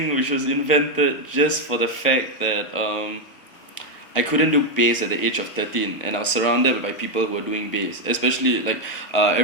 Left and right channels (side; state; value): both; normal; correlation 0.03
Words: which was invented just for the fact that I couldn't do bass at the age of 13, and I was surrounded by people who were doing bass. Especially like